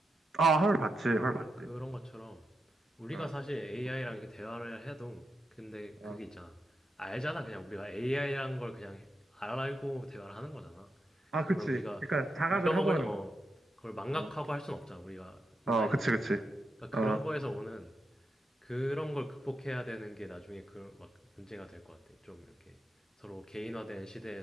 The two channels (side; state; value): both; normal; correlation 0.86